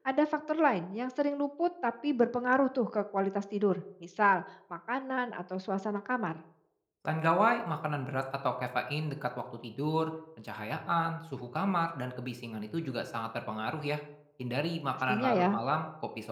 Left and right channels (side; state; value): both; identical; correlation 1.00